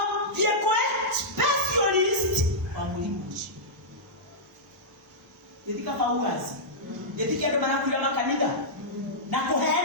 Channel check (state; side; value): normal; both; correlation -0.11